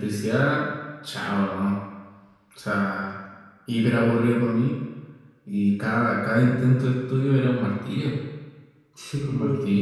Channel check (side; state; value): both; identical; correlation 1.00